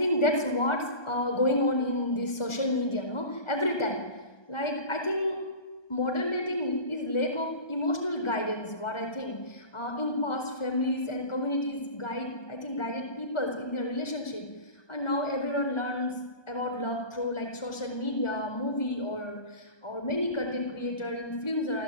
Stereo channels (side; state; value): right; late; 1.4 ms